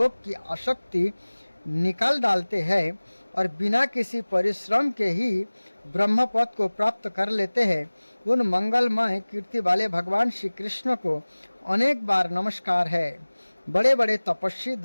की आसक्ति निकाल डालते हैं और बिना किसी परिश्रम के ही ब्रह्मपद को प्राप्त कर लेते हैं, उन मंगलमय कीर्ति वाले भगवान श्री कृष्ण को अनेक बार नमस्कार है। बड़े बड़े तपस्वी,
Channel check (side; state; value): both; inverted; correlation -1.00